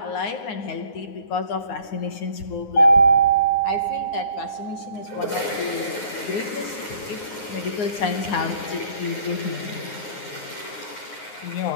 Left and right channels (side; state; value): right; late; 9.6 ms